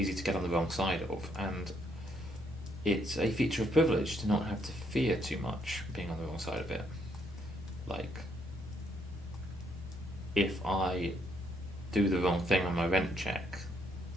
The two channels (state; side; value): normal; both; correlation 0.72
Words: to get on the wrong side of, and it's a feature of privilege to not have to fear too much being on the wrong side of it. Like, if I do the wrong thing on my rent check,